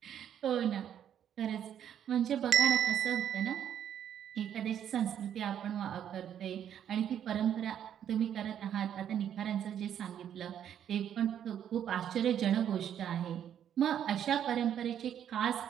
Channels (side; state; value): left; quieter; 9.6 dB